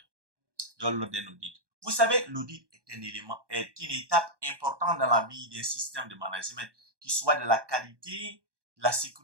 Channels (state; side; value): late; left; 1.2 ms